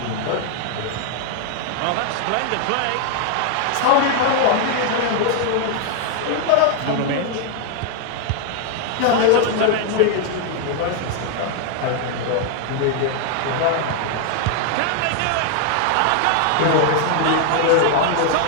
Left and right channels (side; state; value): both; different; correlation 0.00